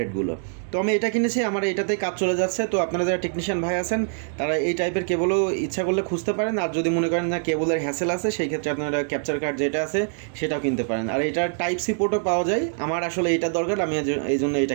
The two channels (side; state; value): left; silent; 62 dB below the other